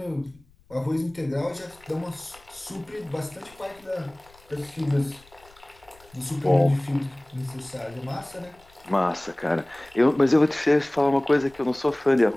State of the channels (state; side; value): noise; left; rumble, 28 dB below the sound